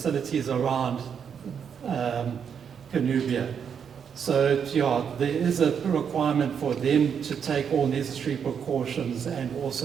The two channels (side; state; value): left; quieter; 7.4 dB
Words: around Cornubia. So there is a requirement for them to take all necessary precautions and